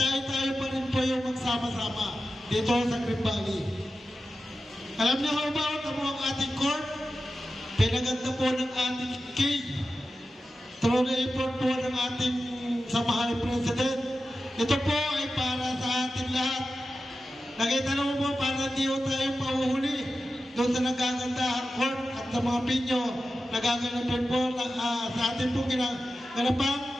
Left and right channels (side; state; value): both; normal; correlation 0.92